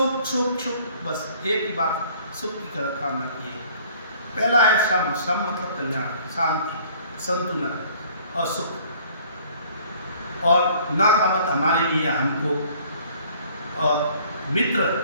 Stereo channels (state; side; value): inverted; both; correlation -0.55